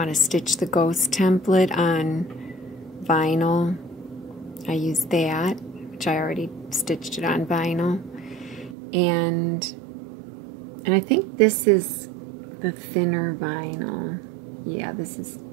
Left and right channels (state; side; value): drops out; left; at 8.8 s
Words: to stitch the ghost template on vinyl, I use that, which I already stitched it on vinyl. And I think this is the thinner vinyl. Yeah, this is